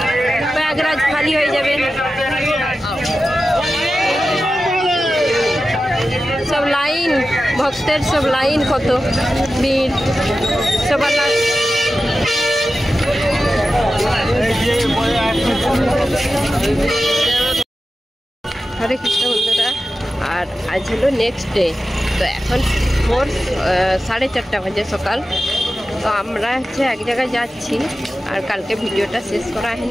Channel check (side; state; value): both; normal; correlation 0.93